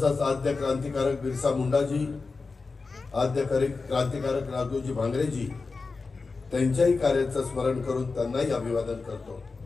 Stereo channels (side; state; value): right; quieter; 4.2 dB